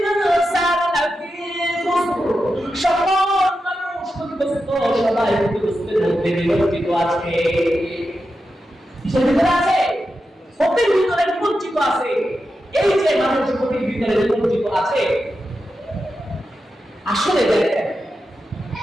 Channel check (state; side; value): normal; both; correlation 0.89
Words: লাফি খুসর, সকল মানুষ ক্ষতিগ্রস্ত, সবাই ক্ষতিগ্রস্তের মধ্যে নিমজ্জিত আছে। কিসের ভিতরে আছে? ক্ষতির ভিতরে নিমজ্জিত আছে। এই যে মানুষ ক্ষতির ভিতরে নিমজ্জিত আছে, আসলে দেখেন